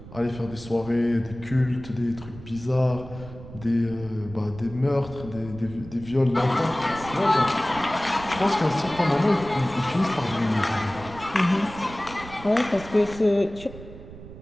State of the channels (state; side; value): noise; right; rumble, 15 dB below the sound